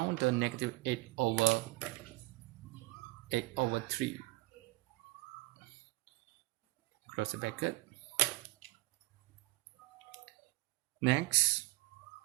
the negative 8 over 3. Close the bracket. Next,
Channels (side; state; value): left; quieter; 20.4 dB